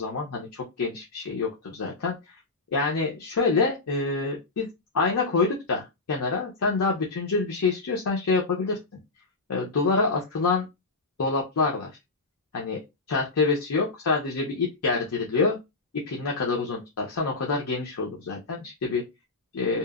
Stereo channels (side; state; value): right; quieter; 3.6 dB